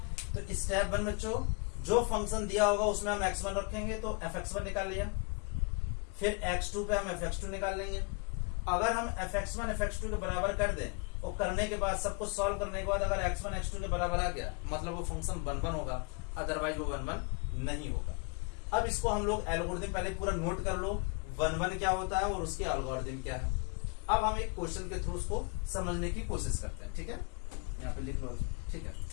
तो स्टेप 1 बच्चों, जो फंक्शन दिया होगा उसमें हम x1 रखेंगे तो fx1 निकाल लिया, फिर x2 पे हम fx2 निकाल लेंगे। अगर हम fx1 fx2 के बराबर कर दें और करने के बाद सब कुछ सॉल्व करने के बाद अगर x1 x2 के बराबर आ गया, मतलब वो फंक्शन 1 1 होगा, अदरवाइज वो 1 1 नहीं होगा। अब इसको हम लोग एल्गोरिथम पहले पूरा नोट कर लो, 1 1 क्या होता है और उसके एल्गोरिथम क्या है। अब हम एक क्वेश्चन के थ्रू उसको समझने की कोशिश करते हैं, ठीक है, यहाँ पे लिख लो, ठीक है।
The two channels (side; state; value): right; quieter; 32.4 dB